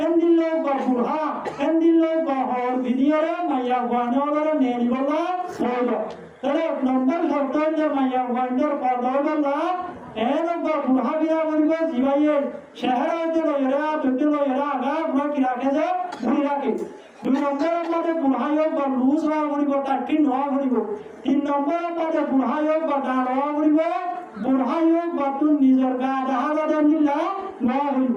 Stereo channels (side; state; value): both; identical; correlation 1.00